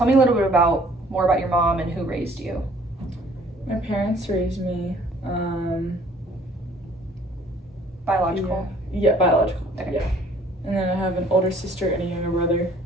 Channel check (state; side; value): normal; both; correlation 0.57